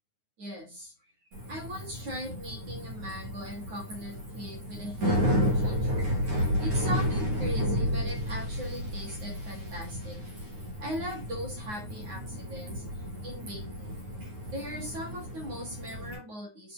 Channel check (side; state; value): left; late; 9.5 ms